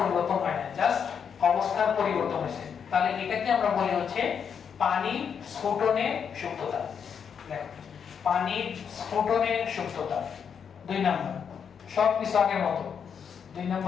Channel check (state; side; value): quieter; right; 7.2 dB